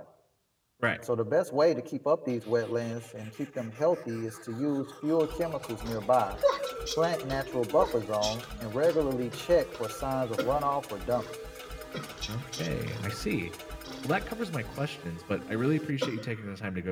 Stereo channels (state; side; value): identical; both; correlation 1.00